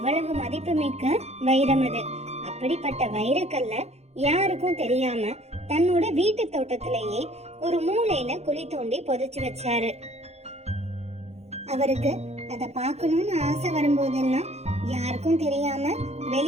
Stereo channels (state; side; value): late; left; 0.31 ms